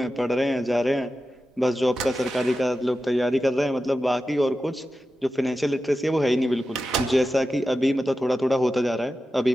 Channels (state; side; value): normal; both; correlation 0.92